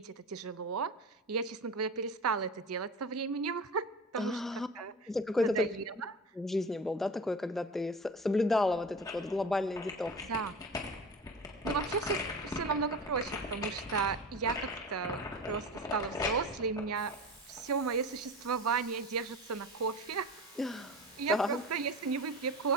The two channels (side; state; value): both; normal; correlation 0.32